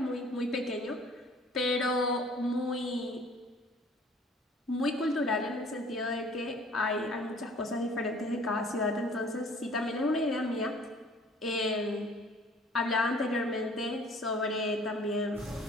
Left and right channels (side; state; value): both; normal; correlation 0.52